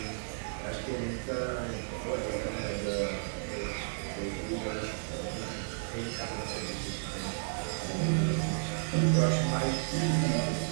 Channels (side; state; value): left; silent; 56 dB below the other